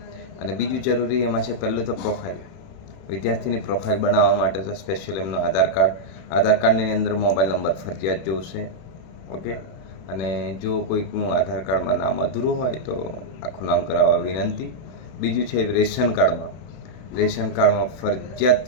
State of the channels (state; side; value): late; right; 31 ms